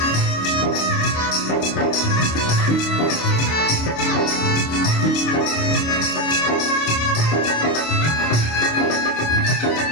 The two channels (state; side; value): late; right; 25 ms